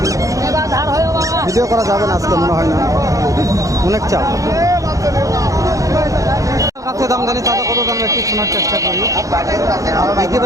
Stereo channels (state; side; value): late; left; 0.16 ms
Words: ভিডিও করা যাবে না আজকে মনে হয় না, অনেক চাপ। কাছে দাম জানি তাদের কত দাম একটু শোনার চেষ্টা করি।